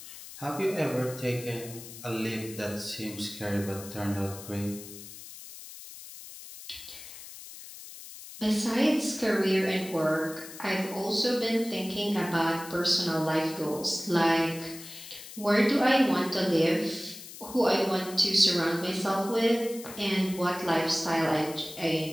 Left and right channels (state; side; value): noise; left; hiss, 14 dB below the sound